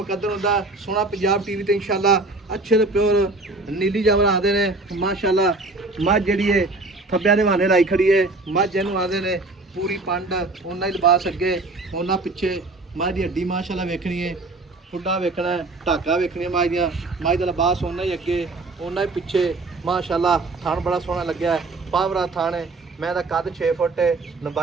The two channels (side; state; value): left; quieter; 3.2 dB